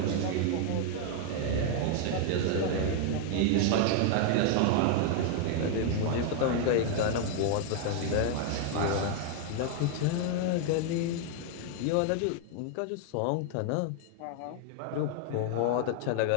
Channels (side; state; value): both; different; correlation 0.00